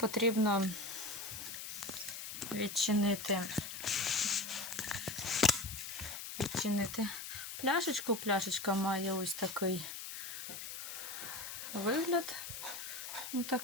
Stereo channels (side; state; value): left; noise; hiss, 8 dB below the sound